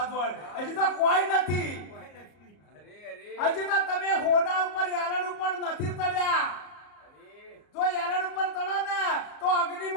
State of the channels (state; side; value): late; right; 34 ms